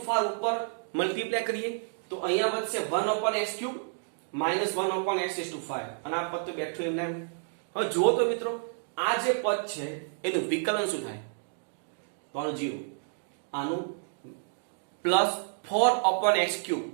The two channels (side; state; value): left; silent; digital silence